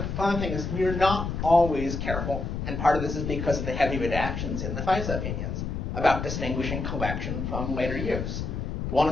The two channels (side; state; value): left; noise; rumble, 3 dB below the sound